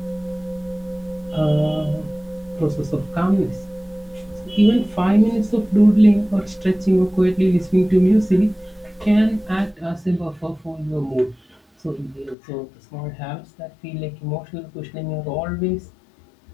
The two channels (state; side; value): drops out; right; at 12.4 s